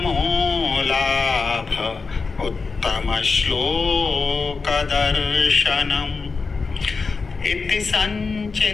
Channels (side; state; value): right; quieter; 4.6 dB